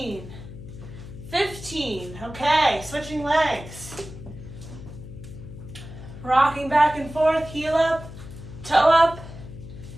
15. Okay, switching legs. Rocking back and forth, heel up, toe up.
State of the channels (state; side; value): noise; left; hum, 13 dB below the sound